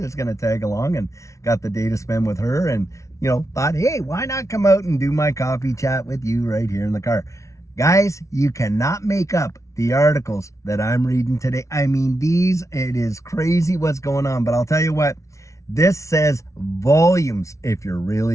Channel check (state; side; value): late; right; 0.14 ms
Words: going to tag along, and got the day to spend with her, and, thought, hey, why not come out and do my coffee chat with you right here in the car? Guys, you cannot make up the articles that I'm reading today. I mean, it is crazy what's going on, but I'll tell you what, this says volumes if you're